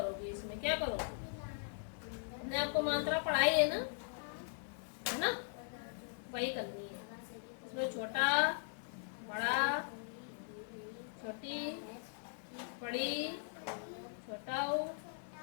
इसमें क्या करोगी? हमने आपको मात्रा पढ़ाई है ना, है ना? वही करनी है। इसमें छोटा, बड़ा, छोटी, बड़ी, छोटाऊ,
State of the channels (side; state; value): right; silent; 51 dB below the other